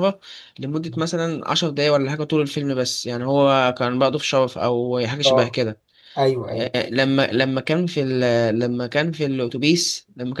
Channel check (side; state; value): both; identical; correlation 1.00